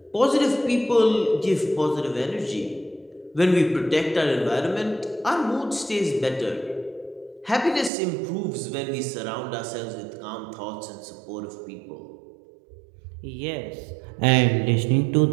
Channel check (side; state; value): left; drops out; at 7.9 s